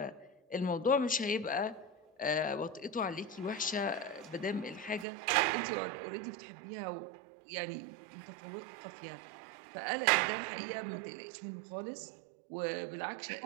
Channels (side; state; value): left; drops out; at 5.1 s